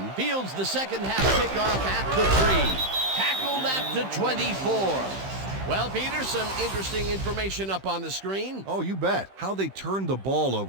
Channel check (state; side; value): late; left; 15 ms